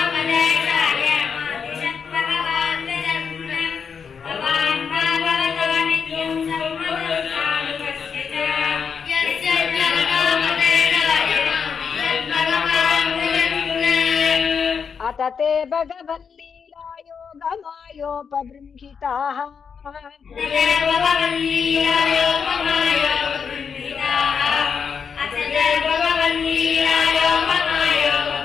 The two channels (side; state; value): right; quieter; 6.4 dB